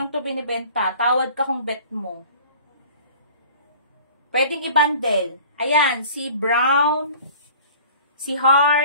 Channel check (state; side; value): inverted; both; correlation -0.46